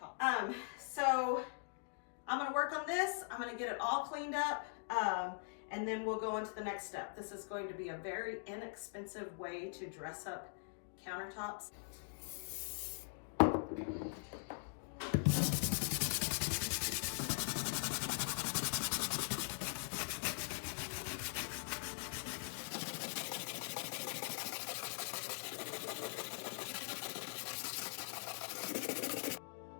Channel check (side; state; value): right; silent; digital silence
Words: So I'm going to work on this, I'm going to get it all cleaned up, and then we'll go into the next step. This is going to be a very inexpensive way to dress up countertops.